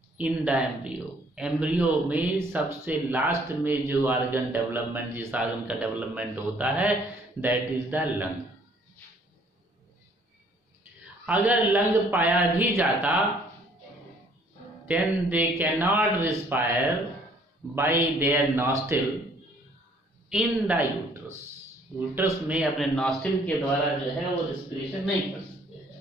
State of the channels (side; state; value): both; normal; correlation 0.61